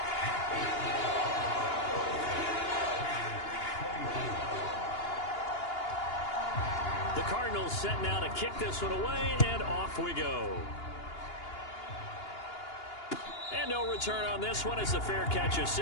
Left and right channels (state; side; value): late; right; 2.8 ms